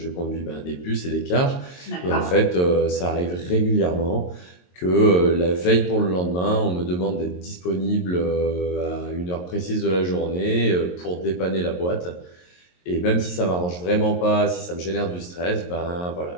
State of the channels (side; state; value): right; late; 22 ms